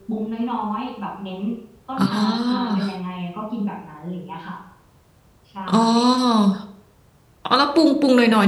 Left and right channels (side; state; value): both; identical; correlation 1.00